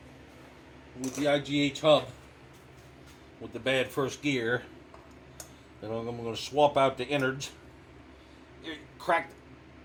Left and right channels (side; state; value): both; identical; correlation 1.00